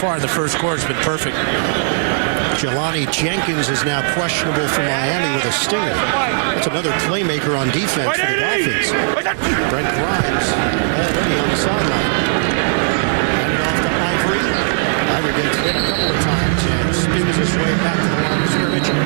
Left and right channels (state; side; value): silent; left; digital silence